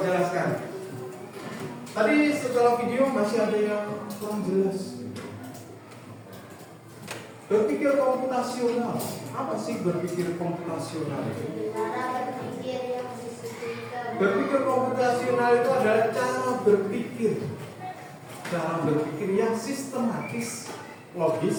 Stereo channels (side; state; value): both; identical; correlation 1.00